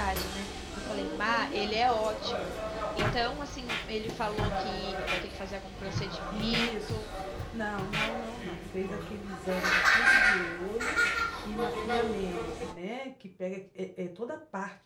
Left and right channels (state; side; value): identical; both; correlation 1.00